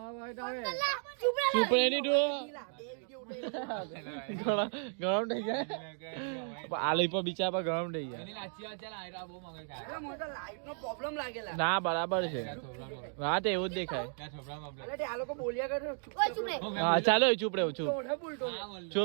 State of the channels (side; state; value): left; silent; 55 dB below the other